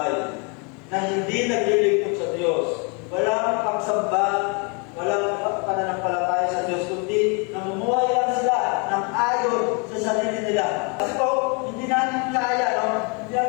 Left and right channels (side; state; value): right; quieter; 34.0 dB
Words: na hindi naglilingkod sa Diyos. Walang pagsamba, walang pananampalataya sa Diyos, kundi namumuhay lang sila ng ayon sa sarili nila. Kasi po, hindi natin kaya, hindi